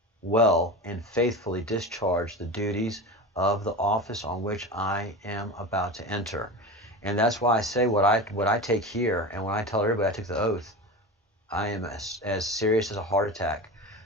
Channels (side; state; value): both; normal; correlation 0.28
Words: well and faithfully discharge the duties of the office on which I am about to enter. And that's why I say what I take here, and when I tell everybody I took the oath, I am as serious as a heart attack.